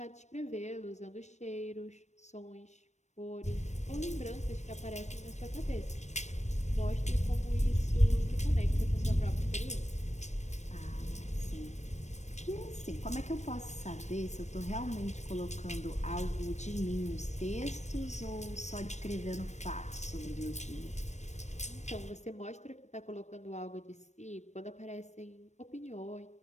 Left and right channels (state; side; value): late; right; 0.34 ms